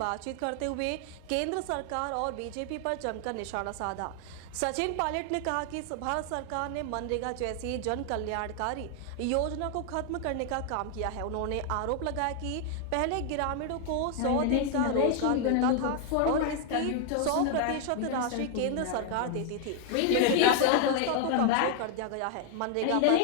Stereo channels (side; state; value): both; different; correlation 0.00